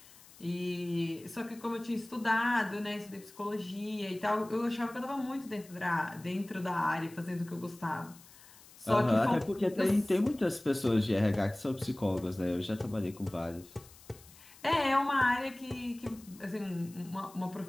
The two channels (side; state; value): left; noise; hiss, 22 dB below the sound